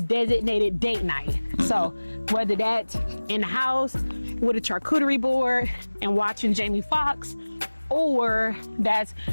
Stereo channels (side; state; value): both; inverted; correlation -1.00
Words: date night. So whether that's in the house with a charcuterie board and watching Jamie Foxx, or that's